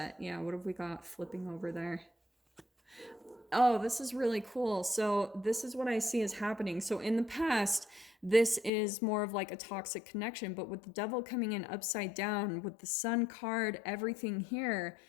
Yeah, what have we got flipping over there? Oh, this is really cool. So this is what I see as happening. So in the past, this is more of like a toxic connection, but with the devil coming in upside down, with the sun card, everything here,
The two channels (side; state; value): right; drops out; at 8.7 s